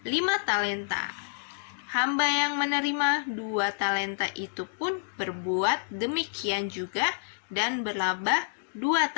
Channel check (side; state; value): right; silent; digital silence